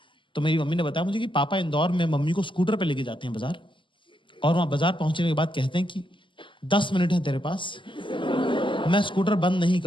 तो मेरी मम्मी ने बताया मुझे कि पापा इंदौर में मम्मी को स्कूटर पे लेके जाते हैं बाजार, और वहां बाजार पहुंचने के बाद कहते हैं कि 10 मिनट है तेरे पास, मैं स्कूटर बंद नहीं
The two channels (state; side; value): late; right; 0.24 ms